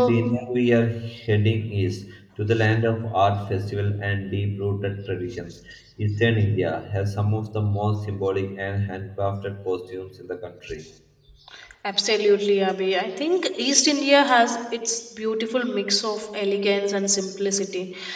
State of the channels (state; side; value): identical; both; correlation 1.00